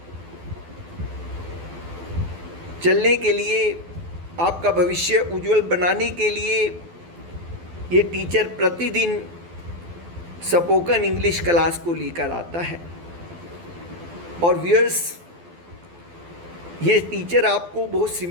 चलने के लिए, आपका भविष्य उज्जवल बनाने के लिए ये टीचर प्रतिदिन स्पोकन इंग्लिश क्लास को लेकर आता है। और व्यूअर्स, ये टीचर आपको बहुत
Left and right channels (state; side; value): late; left; 12 ms